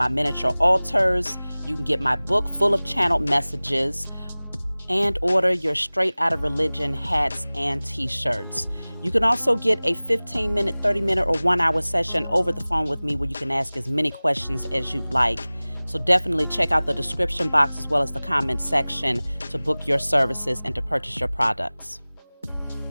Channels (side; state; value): both; inverted; correlation -0.99